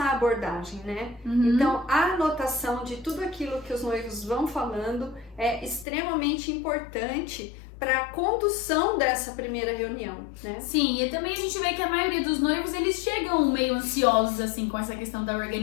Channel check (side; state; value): right; drops out; at 5.9 s